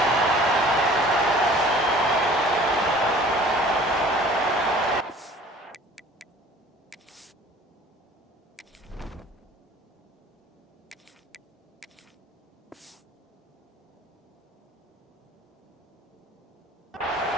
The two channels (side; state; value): both; normal; correlation 0.49